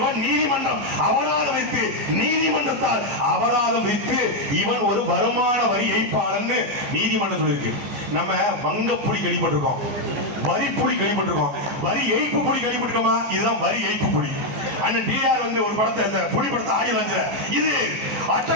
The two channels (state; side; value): late; left; 14 ms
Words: நீதிமன்றம் அபராதம் வைத்து, நீதிமன்றத்தால் அபராதம் வைத்து இவன் ஒரு வருமான வரி ஏய்ப்பாளர்னு நீதிமன்றம் சொல்லியிருக்கு. நம்ம வங்க புலி கேள்விப்பட்டிருக்கோம், வரி புலி கேள்விப்பட்டிருக்கோம், வரி ஏய்ப்பு புலி கேள்விப்பட்டிருக்கோமா? இதுதான் வரி ஏய்ப்பு புலி. அண்ணன் டிஆர் வந்து ஒரு படத்தை, அந்த புலி படத்தை ஆடி வந்து, இது